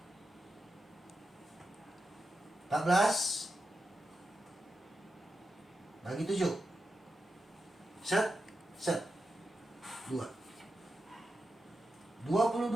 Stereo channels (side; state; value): both; normal; correlation 0.89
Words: 14 bagi 7. Set 2.